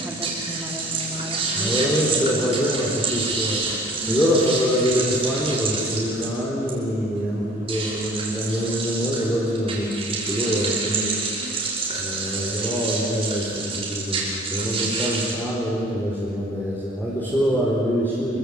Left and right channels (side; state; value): both; normal; correlation 0.52